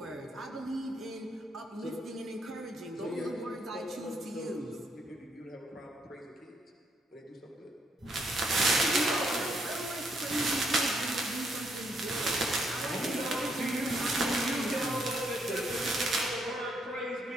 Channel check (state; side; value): normal; both; correlation 0.73